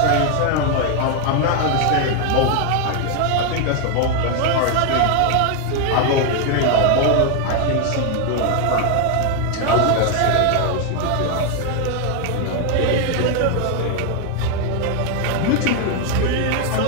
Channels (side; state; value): both; different; correlation 0.01